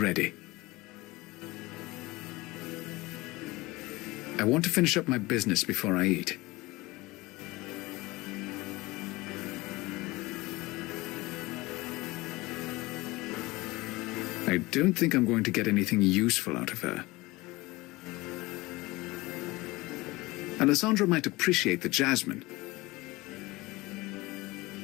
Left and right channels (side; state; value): right; quieter; 21.4 dB